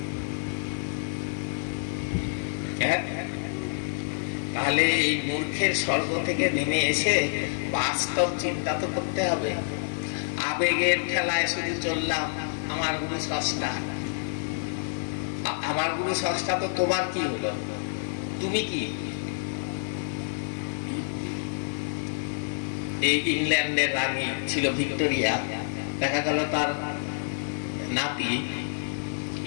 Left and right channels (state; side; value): silent; right; digital silence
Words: তাহলে এই মূর্খের স্বর্গ থেকে নেমে এসে বাস্তব চিন্তা তো করতে হবে। আবেগের ঠেলায় শুধু চললাম, আমার গুরু স্রষ্টা, আমার গুরু স্রষ্টা, তো তোমার কি হলো? তুমি কি? এই ইংল্যান্ডের রানী ছিল ভিক্টোরিয়া, দেখা গেল তার নাতি